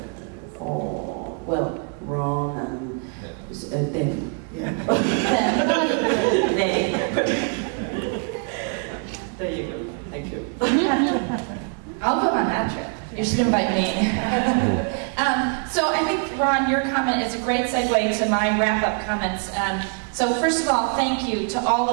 Ron and them. Yeah. There you go. Thank you. I'll go on that trip. You should invite me. So I think, Ron, your comment is a great segue to my wrap-up comments. So first of all, thank you to all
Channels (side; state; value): left; quieter; 36.2 dB